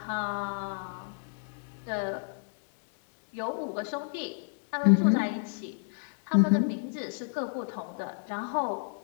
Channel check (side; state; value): right; silent; digital silence